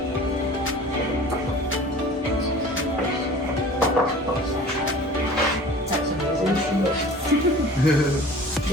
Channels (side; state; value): both; normal; correlation 0.43